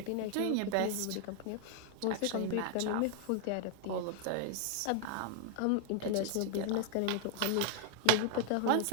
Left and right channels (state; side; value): different; both; correlation 0.00